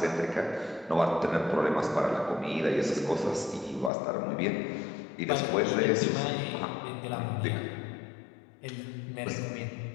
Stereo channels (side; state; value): right; drops out; at 3.9 s